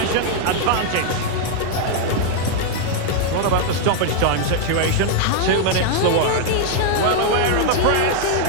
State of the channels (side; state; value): both; different; correlation 0.00